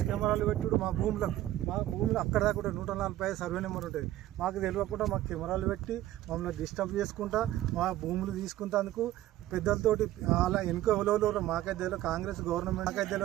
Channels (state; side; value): quieter; left; 14.5 dB